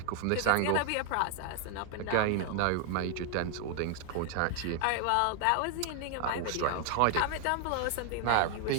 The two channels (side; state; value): both; different; correlation 0.00